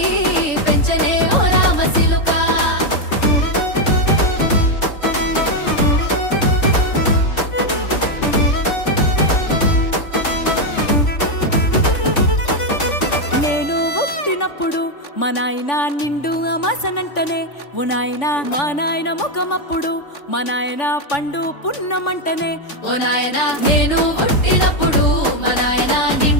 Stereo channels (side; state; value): right; late; 3.5 ms